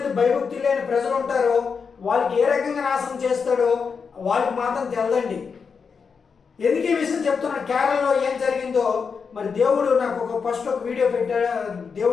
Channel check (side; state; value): right; quieter; 5.7 dB